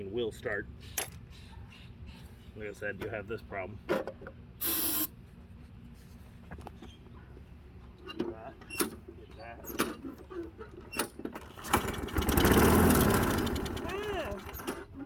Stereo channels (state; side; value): identical; both; correlation 1.00